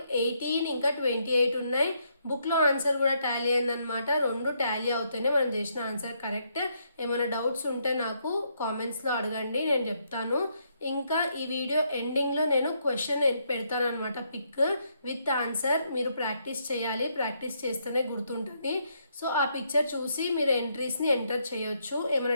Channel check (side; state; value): both; inverted; correlation -0.75